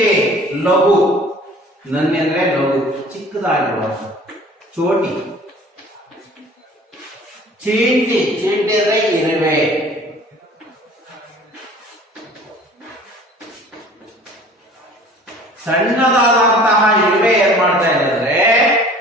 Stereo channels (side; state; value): both; normal; correlation 0.48